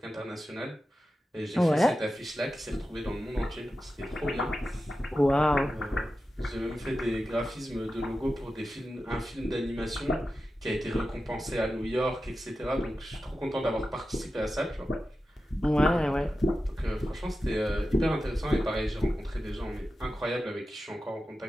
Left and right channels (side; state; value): both; normal; correlation 0.92